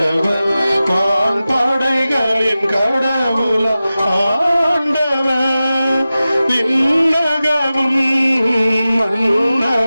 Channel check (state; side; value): inverted; both; correlation -0.95